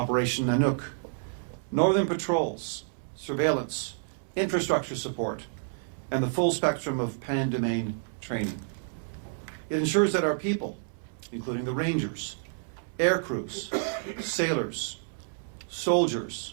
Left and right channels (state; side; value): silent; left; 58 dB below the other